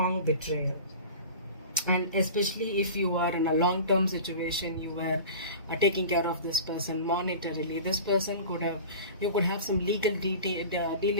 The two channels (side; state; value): both; inverted; correlation -0.36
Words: betrayal. And especially if you are in a long-term situation, you were taking care of this person monetarily. This person you could have some legal